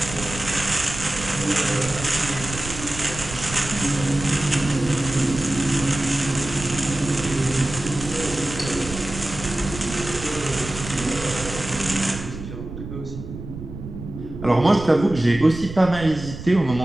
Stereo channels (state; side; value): noise; right; rumble, 10 dB below the sound